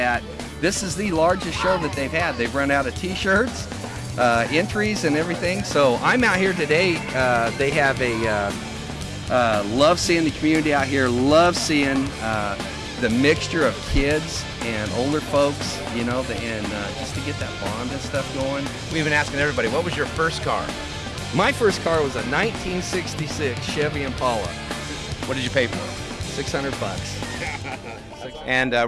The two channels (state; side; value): identical; both; correlation 1.00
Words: this is the largest show that they've had. They've run out of t-shirts, entries, and everything, so I'm out here today. They have a love seeing the community out here, love seeing the mixture of kids and older folks, you know, and just to get that bond and stuff going. We've been asking everybody, what was your first car? My first car was a 1966 Chevy Impala. What did you pay for it? $600. And we're